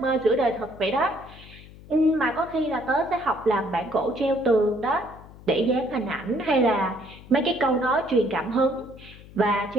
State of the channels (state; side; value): noise; left; hum, 19 dB below the sound